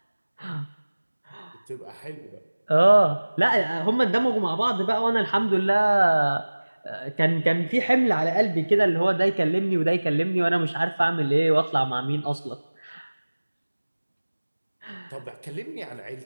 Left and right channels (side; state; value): both; inverted; correlation -1.00